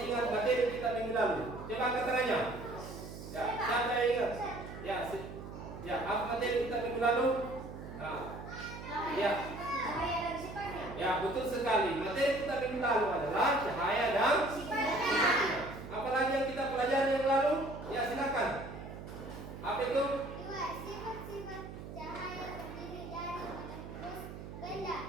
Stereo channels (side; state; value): right; noise; hum, 11 dB below the sound